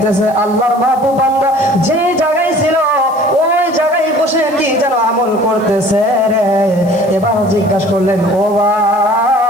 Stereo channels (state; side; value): noise; left; hiss, 25 dB below the sound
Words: আল্লাহর মাহবুব বান্দা যে জায়গায় ছিল ওই জায়গায় বসে কি যেন আমল করতেছে রে। এবার জিজ্ঞাসা করলেন, ও